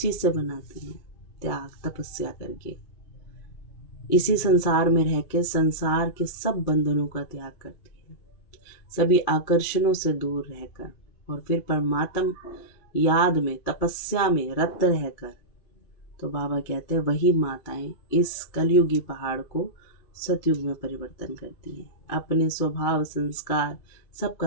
से बनाती हैं? त्याग, तपस्या करके। इसी संसार में रह के संसार के सब बंधनों का त्याग करती है, सभी आकर्षणों से दूर रहकर, और फिर परमात्मा याद में, तपस्या में रत रहकर। तो बाबा कहते हैं वही माताएं इस कलयुगी पहाड़ को सतयुग में परिवर्तन करती हैं, अपने स्वभाव संस्कार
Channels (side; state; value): right; late; 2.5 ms